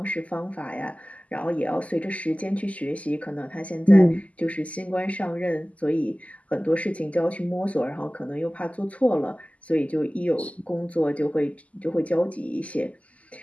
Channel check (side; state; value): right; late; 0.069 ms